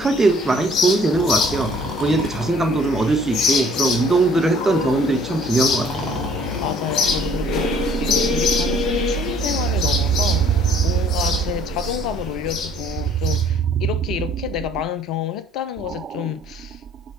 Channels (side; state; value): both; normal; correlation 0.57